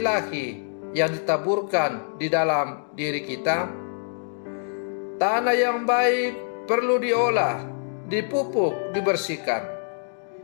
yang ditaburkan di dalam diri kita? Tanah yang baik perlu diolah, dipupuk, dibersihkan.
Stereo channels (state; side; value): silent; right; digital silence